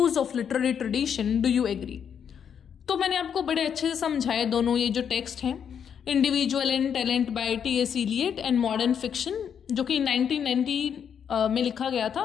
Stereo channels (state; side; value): quieter; right; 7.9 dB